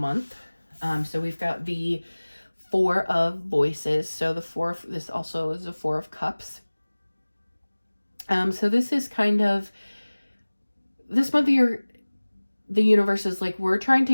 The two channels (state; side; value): inverted; both; correlation -1.00